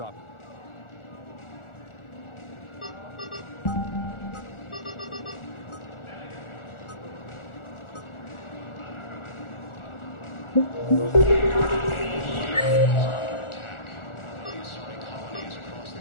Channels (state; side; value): late; right; 1.4 ms